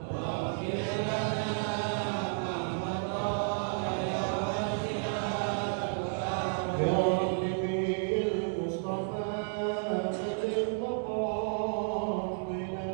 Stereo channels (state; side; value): silent; left; 57 dB below the other